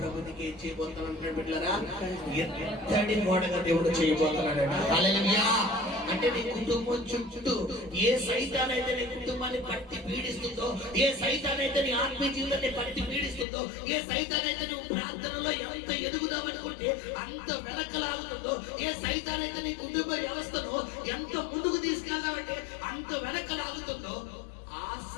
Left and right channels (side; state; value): right; drops out; at 13.5 s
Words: నీకు ఏం చేయబోతున్నాడు అంటే బిడ్డలారా, ఎత్తడి గోడగా దేవుడు చేయబోతున్నాడు. హల్లెలూయా. అంటే నీ కుటుంబం చుట్టూ ఏ సైతానైతే నీ కుటుంబాన్ని పట్టి పీడిస్తుందో, ఏ సైతానైతే నీ ఆత్మీయ జీవితాన్ని పట్టి పీడిస్తుందో, ఏ సైతానైతే నువ్వు ప్రార్థనలో ఎంత ఎదుగుదామనుకుంటే అంత వెనకలాగుతుందో, ఏ సైతానైతే నీ కుటుంబ వ్యవస్థను ఎంత ముందుకు తీసుకెళ్దామంటే అంత వెనకలాగుతుందో, ఆ